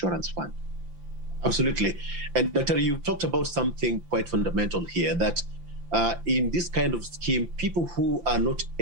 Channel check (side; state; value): left; late; 5.8 ms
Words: Fund. Absolutely. And Dr. you talked about something quite fundamental here, that in this kind of scheme, people who are not